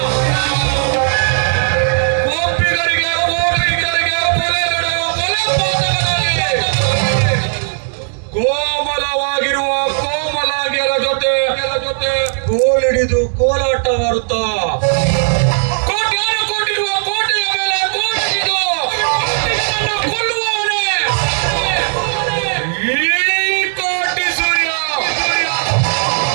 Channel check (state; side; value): silent; left; 69 dB below the other